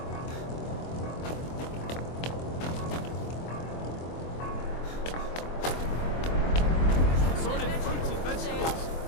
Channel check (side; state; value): right; late; 24 ms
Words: Assorted fruits and vegetables,